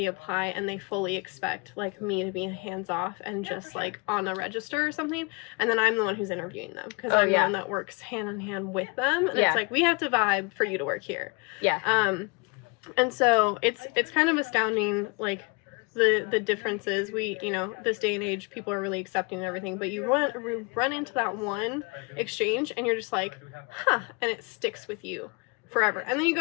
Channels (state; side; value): quieter; right; 30.5 dB